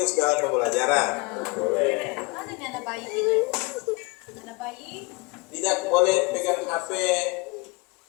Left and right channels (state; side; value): quieter; right; 26.6 dB